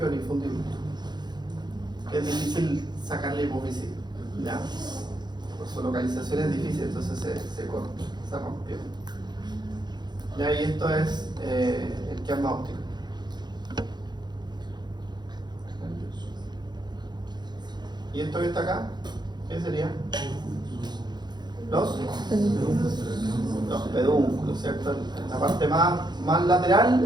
el infundíbulo. Es difícil sacar la hipófisis, ¿ya? Por su localización es difícil, entonces se corta, se rompió. ¿Ya? Y esto es el quiasma óptico. ¿Y esto que está acá? ¿Qué sería? Los pedúnculos, ¿cierto? En la parte más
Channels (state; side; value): late; left; 0.21 ms